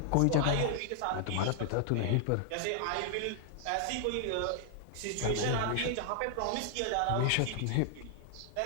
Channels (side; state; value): both; different; correlation 0.00